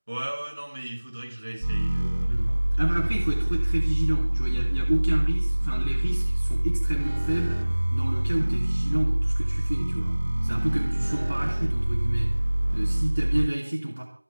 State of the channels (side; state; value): both; inverted; correlation -1.00